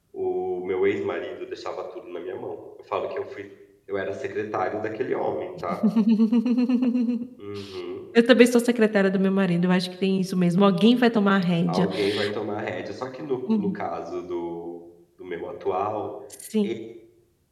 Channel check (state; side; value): identical; both; correlation 1.00